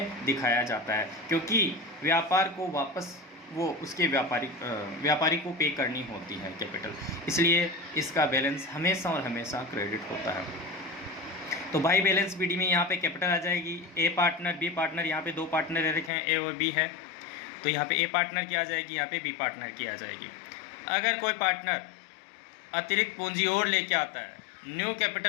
दिखाया जाता है, क्योंकि व्यापार को वापस वो उसके व्यापारी को पे करनी होती है कैपिटल, इसलिए इसका बैलेंस हमेशा और हमेशा क्रेडिट होता है। तो बाई बैलेंस बीडी में यहाँ पे कैपिटल आ जाएगी, ए पार्टनर बी पार्टनर, यहाँ पे दो पार्टनर दे रखे हैं ए और बी है, तो यहाँ पे ए पार्टनर की आ जाएगी, यहाँ पे बी पार्टनर की आ जाएगी। अगर कोई पार्टनर अतिरिक्त पूंजी और लेके आता है, न्यू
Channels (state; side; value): drops out; right; at 16.1 s